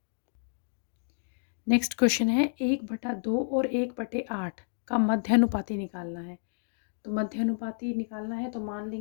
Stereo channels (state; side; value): silent; right; digital silence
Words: नेक्स्ट क्वेश्चन है 1/2 और 1/8 का मध्यानुपाती निकालना है। तो मध्यानुपाती निकालना है तो मान